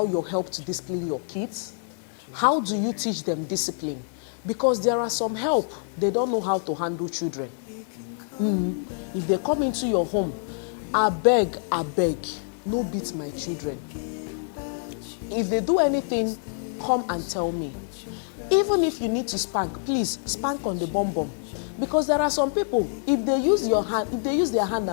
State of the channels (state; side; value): silent; right; digital silence